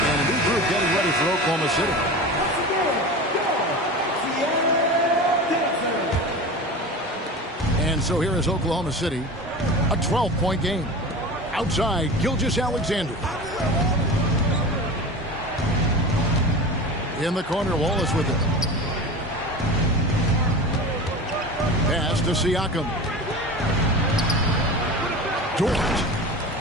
a new group getting ready for Oklahoma City. And so here is Oklahoma City, a 12-point game. Outside, Gilgeous-Alexander. In the corner, Wallace with it. Pass to Siakam.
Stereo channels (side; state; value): both; normal; correlation 0.31